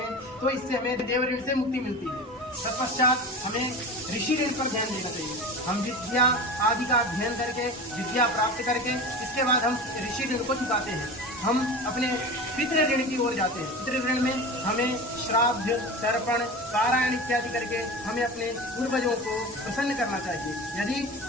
तो इससे हमें देव ऋण से मुक्ति मिलती है। तत्पश्चात हमें ऋषि ऋण पर ध्यान देना चाहिए। हम विद्या आदि का अध्ययन करके, विद्या प्राप्त करके, इसके बाद हम ऋषि ऋण को चुकाते हैं। हम अपने पितृ ऋण की ओर जाते हैं। पितृ ऋण में हमें श्राद्ध, तर्पण, पारायण इत्यादि करके हमें अपने पूर्वजों को प्रसन्न करना चाहिए। यदि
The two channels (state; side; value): normal; both; correlation 0.31